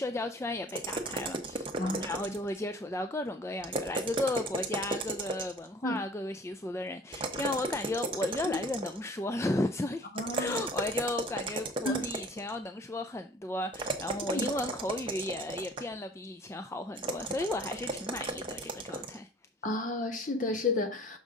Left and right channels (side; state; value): both; normal; correlation 0.50